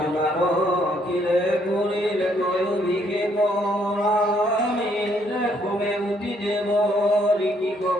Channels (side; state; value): both; normal; correlation 0.69